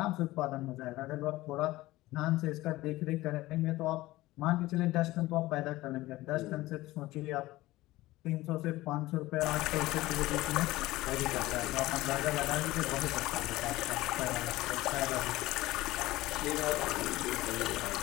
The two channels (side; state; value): right; quieter; 18.0 dB